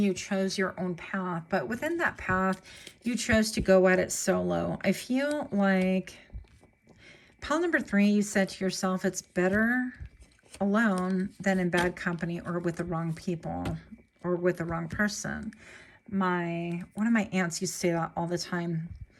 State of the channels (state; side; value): identical; both; correlation 1.00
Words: chose your own path, but within that path, you chose to go at it solo. I feel like pile number 3, you said to yourself, it's better alone than in bad company or with the wrong people or with the wrong person. One of my aunts used to say that all the time.